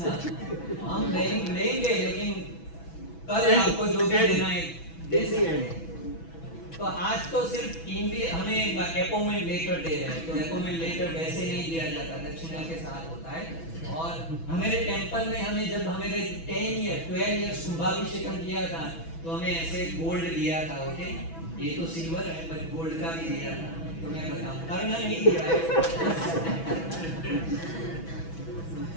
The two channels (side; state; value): right; late; 6.1 ms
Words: हम लेंगे लेकिन कल आपको जो भी देना है दे दीजिए। तो आज तो सिर्फ टीम भी हमें अपॉइंटमेंट लेटर दे रहे हैं, तो अपॉइंटमेंट लेटर वैसे नहीं दिया जाता, दक्षिणा के साथ होता है। और हमारे टेंपल में हमें जब हमें 12 इयर्स शुभाभिषेकम किया था तो हमें ऐसे गोल्ड दिया था, ओके। ये तो सिल्वर है पर गोल्ड का भी दिया था, तो मैं बताऊं करना नहीं दिया है।